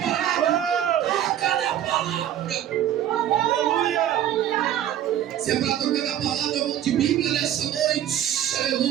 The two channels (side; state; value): left; quieter; 11.1 dB